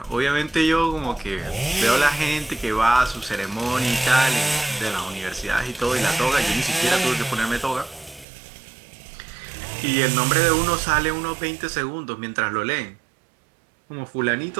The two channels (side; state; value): left; drops out; at 8.2 s